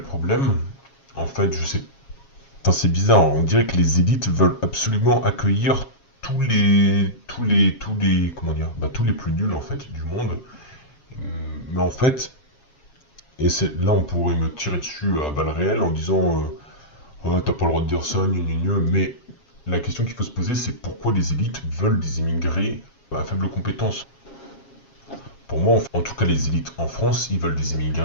problème. En fait, c'est bizarre, on dirait que les élites veulent absolument accueillir tous les plus nuls en fait du monde. Mais en fait, là on pourrait me tirer dessus à balles réelles en disant ouais, t'as pas le droit de dire ça, mais la question qu'il faut se poser, c'est pourquoi les élites veulent des immigrés à faible compétence. Pour moi, en tout cas les élites en France, ils veulent des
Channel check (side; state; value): right; late; 7.3 ms